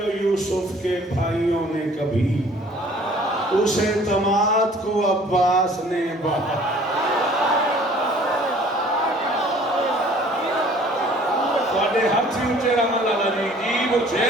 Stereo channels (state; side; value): normal; both; correlation 0.53